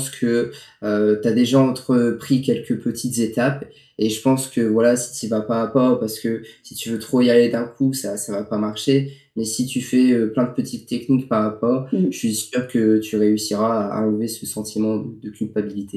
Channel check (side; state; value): both; identical; correlation 1.00